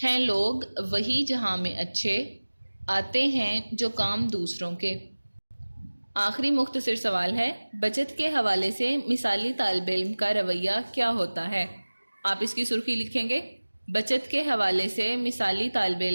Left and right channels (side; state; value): both; inverted; correlation -1.00